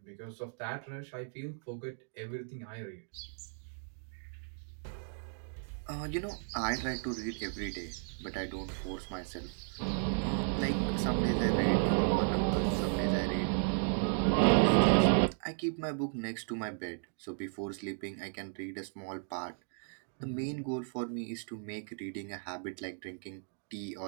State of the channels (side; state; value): left; silent; digital silence